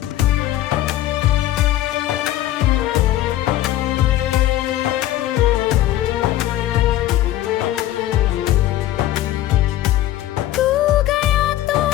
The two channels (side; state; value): right; quieter; 14.0 dB